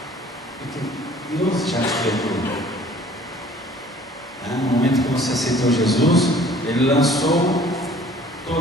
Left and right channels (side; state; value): both; normal; correlation 0.52